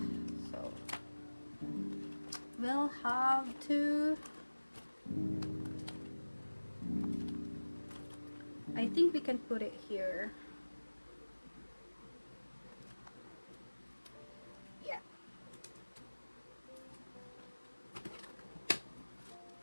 So we'll have to, I think we can put it here. Yeah.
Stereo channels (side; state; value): both; inverted; correlation -1.00